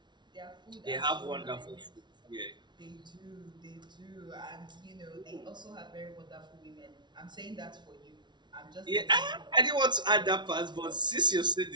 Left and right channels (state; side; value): late; left; 0.21 ms